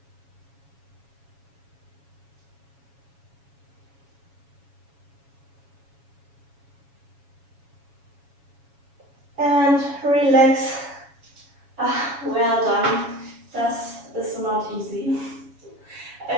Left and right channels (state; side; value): late; left; 7.2 ms